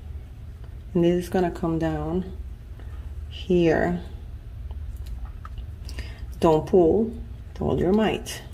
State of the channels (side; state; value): both; identical; correlation 1.00